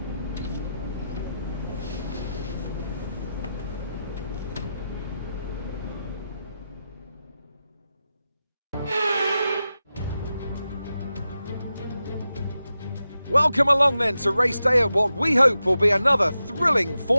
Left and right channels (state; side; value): inverted; both; correlation -0.90